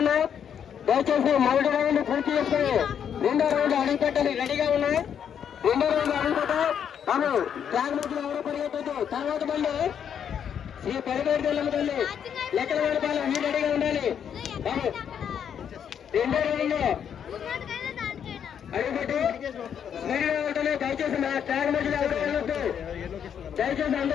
ఉన్నాయి. దయచేసి మొదటి రౌండ్ పూర్తి చేసుకుని రెండో రౌండ్ అడుగు పెట్టాలి. రెడీగా ఉన్నాయి. రెండో రౌండ్ అడుగు పెట్టాలి. బాబు ట్రాక్ మధ్యలో ఎవరు పరిగెత్తద్దు. తర్వాత బండి శ్రీ పెరగేటి తెల్లమ్మ తల్లి లెక్కల వేడపాలెం మీరు రెడీగా ఉండాలి. బాబు రెండో రౌండ్ అడుగుపెట్టి స్పీడ్గా ఉంటుంది. దయచేసి మా ట్రాక్ మధ్యలో ఎవరు వెళ్ళొద్దు. దయచేసి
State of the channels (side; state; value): right; quieter; 8.4 dB